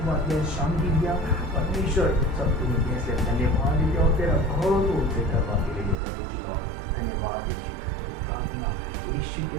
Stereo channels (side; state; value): left; drops out; at 6.0 s